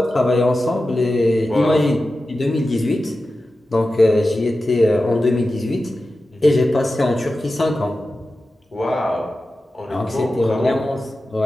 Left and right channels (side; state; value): both; normal; correlation 0.93